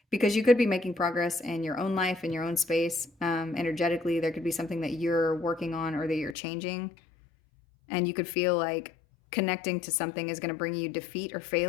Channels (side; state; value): right; drops out; at 6.4 s